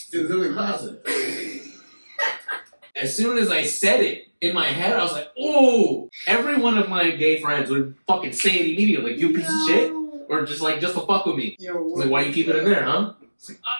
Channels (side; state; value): both; inverted; correlation -1.00